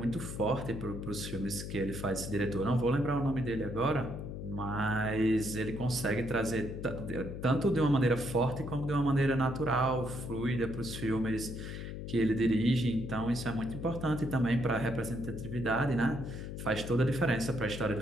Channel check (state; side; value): noise; left; hum, 7 dB below the sound